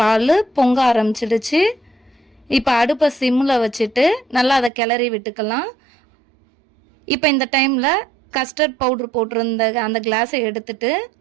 பால் பொங்க ஆரம்பிச்சிடுச்சு. இப்போ அடுப்பை சிம்மில் வச்சுட்டு நல்லா அதை கிளறி விட்டுக்கலாம். இப்போ இந்த டைமில் கஸ்டர்ட் பவுட்ரு போட்டிருந்த அந்த கிளாஸை எடுத்துட்டு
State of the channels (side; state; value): left; drops out; at 4.7 s